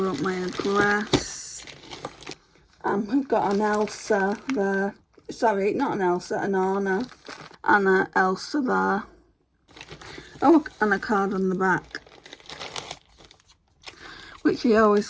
up my address. We've got an Elsa there. Sorry, not an Elsa, an Anna. Anna, Elsa there. Oh, and a card on the back. Which I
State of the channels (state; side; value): identical; both; correlation 1.00